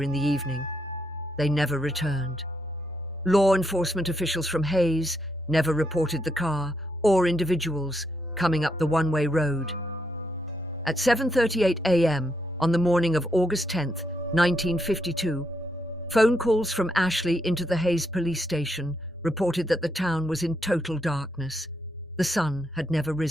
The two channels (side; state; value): both; normal; correlation 0.78